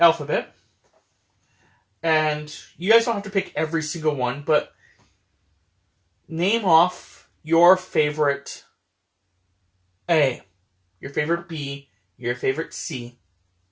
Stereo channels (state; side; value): identical; both; correlation 1.00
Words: and you guys don't have to pick every single one, but name off your favorite A, your favorite B, your favorite C.